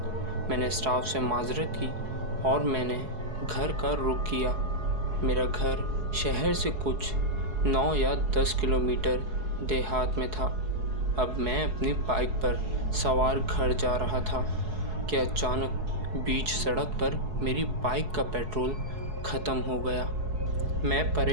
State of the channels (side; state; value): left; late; 4.7 ms